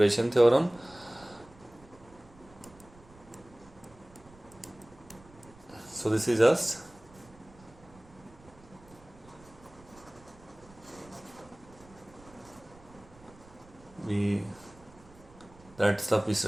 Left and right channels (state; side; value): noise; right; rumble, 23 dB below the sound